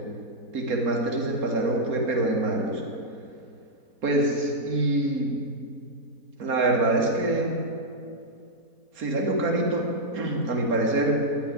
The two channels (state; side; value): late; left; 4.3 ms